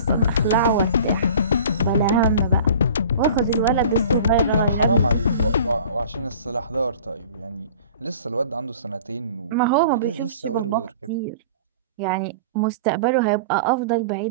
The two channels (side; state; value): both; inverted; correlation -0.43